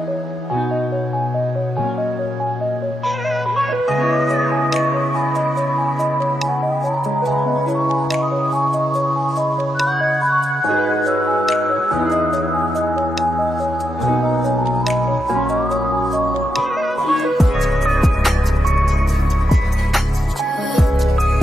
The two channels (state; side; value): normal; both; correlation 0.85